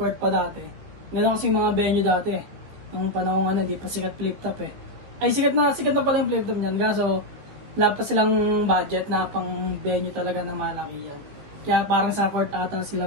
pa dati. Meron kasi mga venue dati eh. Nung panahon hindi pa sikat flip top eh. Ay, sikat na pala yung flip top niyan. Kaso, wala pa silang budget na pang venue talaga na malaki yan. Kaya parang sa court ata sila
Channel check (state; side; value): late; left; 15 ms